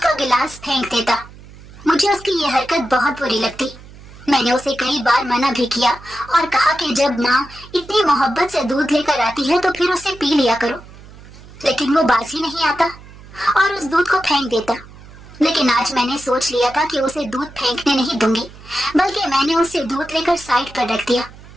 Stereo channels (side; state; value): right; noise; hum, 19 dB below the sound